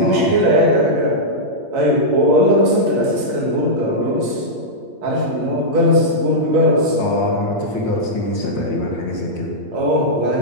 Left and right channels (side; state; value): left; late; 8.7 ms